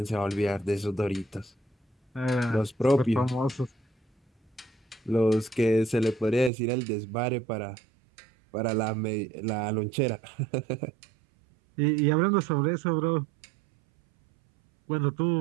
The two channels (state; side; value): drops out; left; at 6.5 s